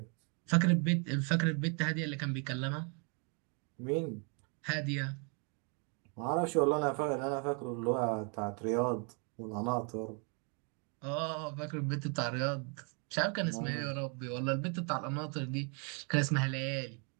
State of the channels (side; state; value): left; quieter; 36.3 dB